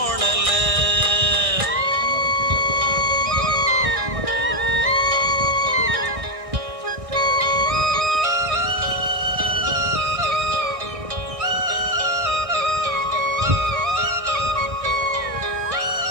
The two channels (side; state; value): left; late; 1.6 ms